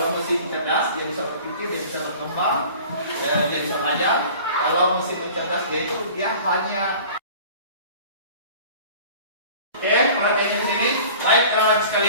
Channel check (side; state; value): both; inverted; correlation -0.43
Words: mesin cerdas dia bisa berpikir, dia bisa berkembang, dia bisa belajar. Kalau mesin cerdas dia hanya perhatiannya di sini. Baik, anak